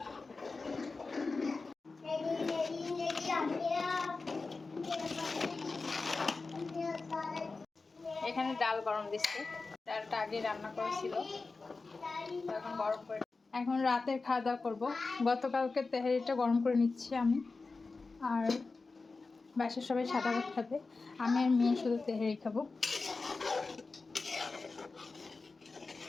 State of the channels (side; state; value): right; quieter; 3.9 dB